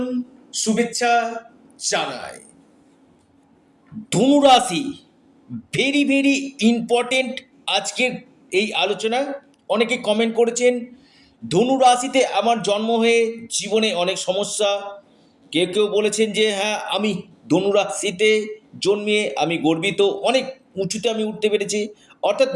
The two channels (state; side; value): identical; both; correlation 1.00